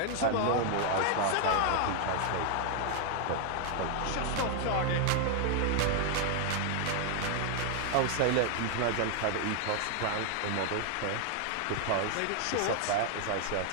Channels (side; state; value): both; different; correlation 0.00